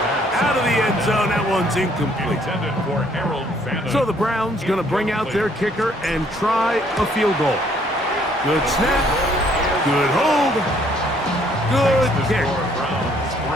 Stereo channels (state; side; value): normal; both; correlation 0.64